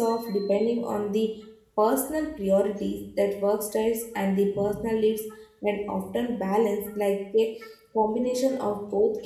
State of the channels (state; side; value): identical; both; correlation 1.00